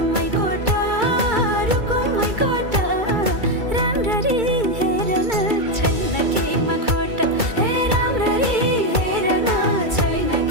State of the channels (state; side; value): late; left; 2.3 ms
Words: my कोटा रुको my कोटा राम्ररी हेर्न छैन केमा खोटा हे राम्ररी हेर्न छैन